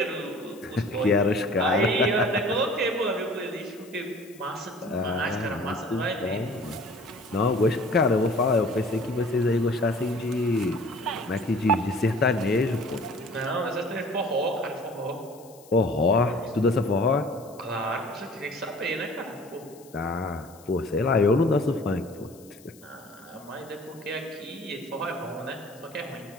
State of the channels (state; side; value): noise; left; hiss, 24 dB below the sound